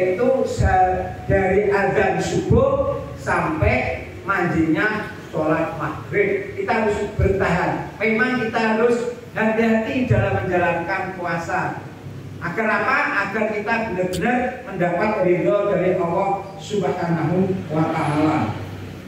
dari azan subuh sampai mandinya sholat maghrib. Kita harus bertahan. Memang kita harus hati-hati dalam menjalankan puasa. Agar apa? Agar kita benar-benar mendapat ridho dari Allah Subhanahu wa Ta'ala.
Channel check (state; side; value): identical; both; correlation 1.00